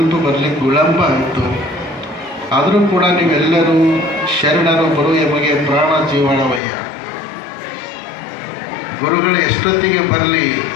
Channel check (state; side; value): drops out; right; at 6.6 s